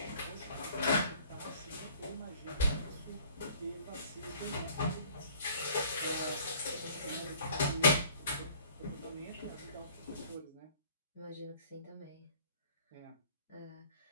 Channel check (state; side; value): inverted; both; correlation -0.53